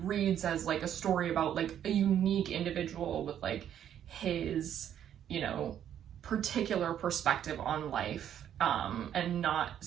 reads as like a story about like a unique individual with like his, you know, particular perspective on life, and not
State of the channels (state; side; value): quieter; left; 10.0 dB